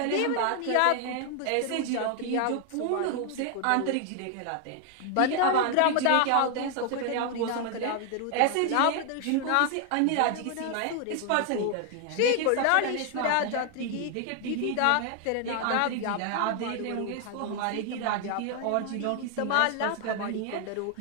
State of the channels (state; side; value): different; both; correlation 0.00